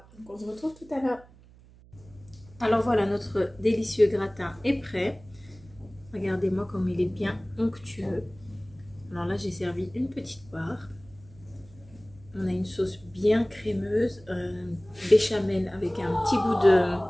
donc on se retrouve tout à l'heure. Alors voilà, notre délicieux gratin est prêt. Regardez-moi comme il est bien onctueux. Alors là, j'ai servi une petite part. On a une sauce bien crémeuse, béchamel avec un petit goût de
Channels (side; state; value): right; noise; hum, 24 dB below the sound